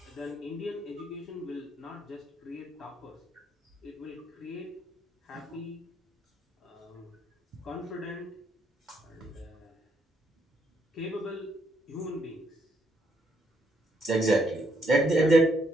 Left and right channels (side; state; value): both; normal; correlation 0.74